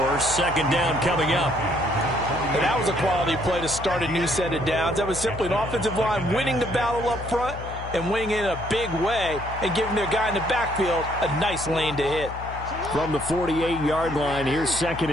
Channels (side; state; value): left; noise; hum, 10 dB below the sound